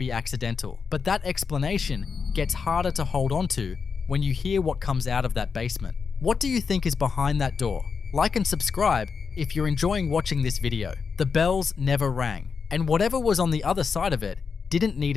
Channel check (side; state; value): right; quieter; 5.6 dB